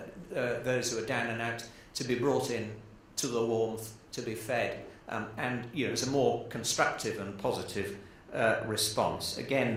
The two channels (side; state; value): both; identical; correlation 1.00